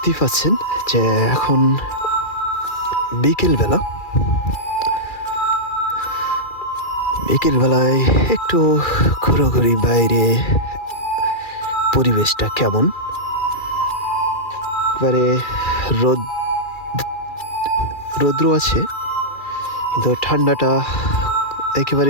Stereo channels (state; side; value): late; right; 2.3 ms